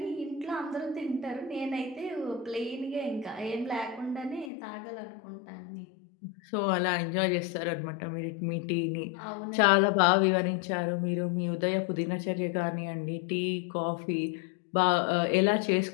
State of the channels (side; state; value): right; drops out; at 4.5 s